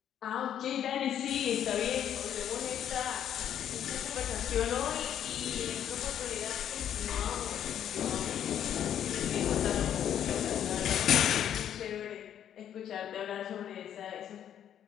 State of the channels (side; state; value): right; quieter; 9.9 dB